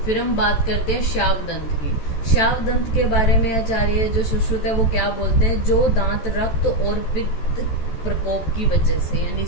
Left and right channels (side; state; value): right; late; 14 ms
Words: फिर हम बात करते हैं शावदंत की। शावदंत के बारे में आचार्य जो सुश्रुत है वो क्या बोलते हैं, जो दांत रक्त और पित्त प्रकोप की वजह से, यानी